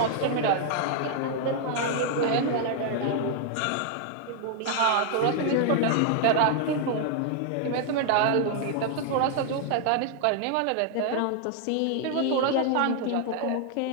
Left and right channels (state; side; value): different; both; correlation 0.00